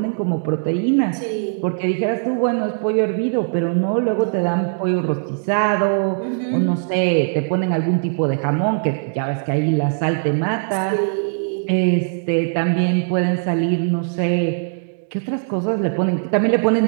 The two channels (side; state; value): left; silent; digital silence